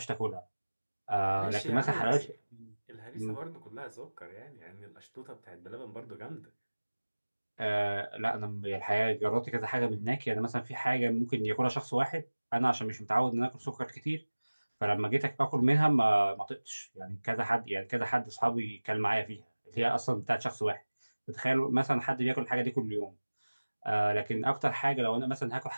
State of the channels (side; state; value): both; inverted; correlation -1.00